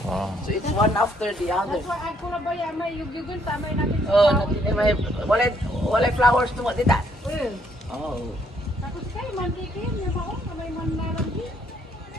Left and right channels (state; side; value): normal; both; correlation 0.68